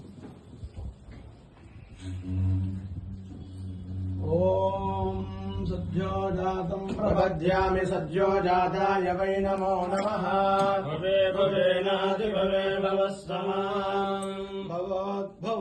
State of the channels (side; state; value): both; identical; correlation 1.00